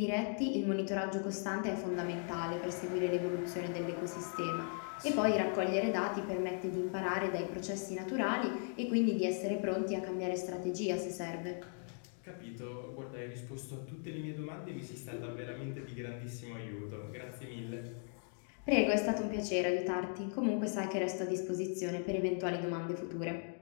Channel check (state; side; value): silent; right; 53 dB below the other